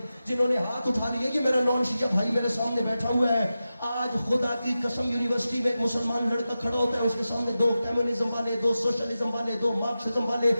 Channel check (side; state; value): both; inverted; correlation -0.92